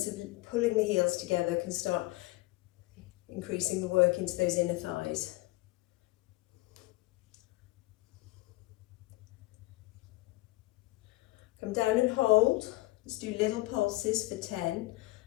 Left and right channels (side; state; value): right; quieter; 20.3 dB